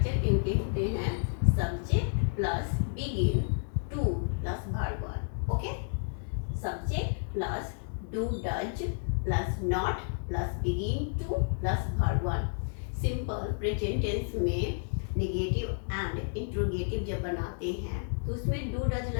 इनके होते हैं subject plus begin, to plus verb one. Okay, subject plus do does plus not plus begin to plus verb one. Simple present tense में नेगेटिव एंड इंट्रोगेटिव जब बनाते हैं तो उसमें डू डज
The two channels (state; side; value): silent; right; 57 dB below the other